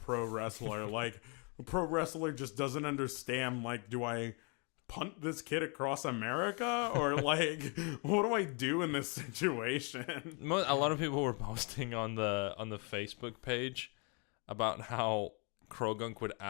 wrestler. Like, a pro wrestler just doesn't understand. Like, do I punt this kid across America, or like, what do I do in this situation? A lot of people were posting on the Facebook page about how Crogunk would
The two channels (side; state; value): right; quieter; 34.2 dB